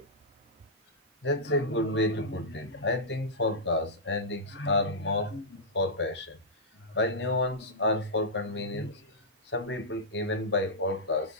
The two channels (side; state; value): both; normal; correlation -0.11